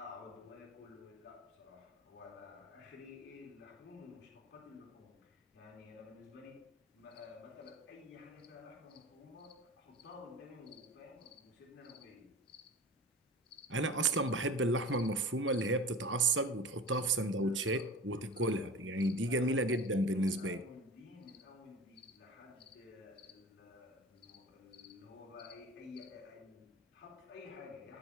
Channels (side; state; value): both; normal; correlation 0.36